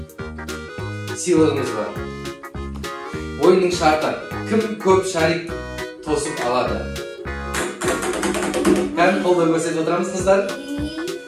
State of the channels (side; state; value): both; identical; correlation 1.00